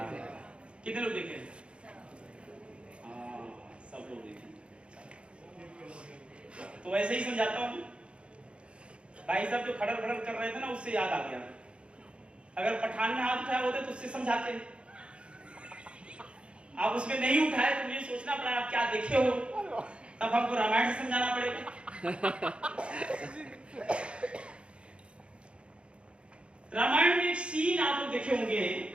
कितने लोग देखे? हाँ, सब लोग देखे। तो ऐसे ही समझाता हूँ। भाई साहब जो खड़र खड़र कर रहे थे ना, उससे याद आ गया। अगर पठान में हाथ उठाए होते तो उससे समझाते। आप उसमें नहीं उठाए तो मुझे सोचना पड़ा आप क्या देखे हो, तब हमको रामायण से समझाना पड़ेगा। रामायण में एक सीन आप लोग देखे होंगे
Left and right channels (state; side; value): late; left; 0.058 ms